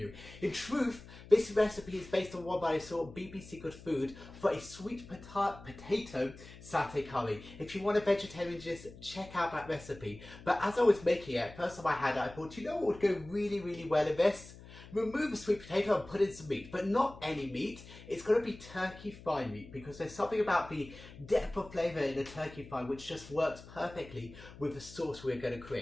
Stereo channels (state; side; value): noise; left; hum, 17 dB below the sound